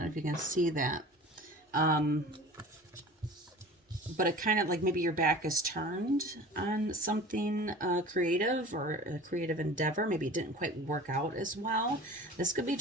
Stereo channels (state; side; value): normal; both; correlation 0.40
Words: know if you can see that. But it kind of like maybe your back is turned on something creative, or a creative endeavor. Maybe it didn't quite work out as well. This could be